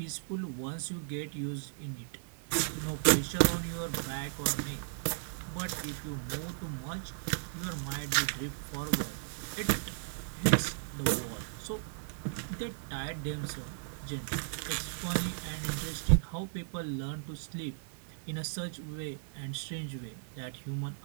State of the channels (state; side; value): silent; left; digital silence